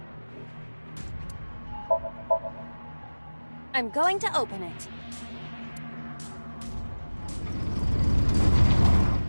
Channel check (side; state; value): both; inverted; correlation -1.00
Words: I'm going to open it.